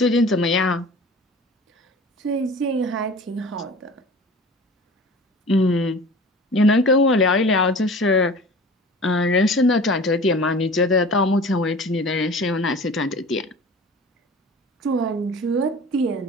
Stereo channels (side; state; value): both; normal; correlation 0.40